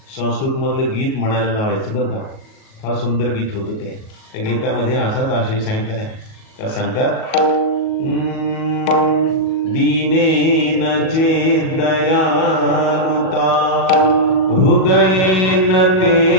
संस्कृतमधलं गीत म्हणायला लावायचं बरं का. फार सुंदर गीत होतं ते. त्या गीतामध्ये असाच आशय सांगितला आहे. त्या सांगतात, दीनेन चेदयानुता हृदयेन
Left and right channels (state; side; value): late; right; 38 ms